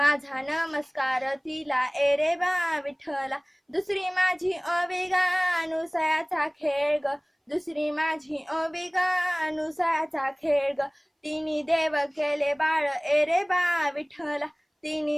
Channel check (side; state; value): both; identical; correlation 1.00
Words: नमस्कार तिला ए रे बा विठ्ठला. दुसरी माझी ओवी गा अनुसयाचा खेळ ग, दुसरी माझी ओवी गा अनुसयाचा खेळ ग, तिनी देव केले बाळ ए रे बा विठ्ठला,